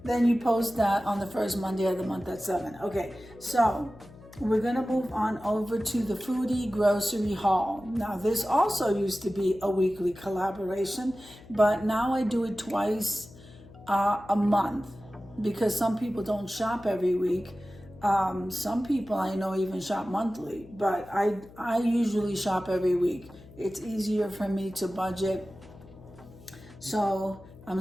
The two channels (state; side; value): noise; left; hum, 20 dB below the sound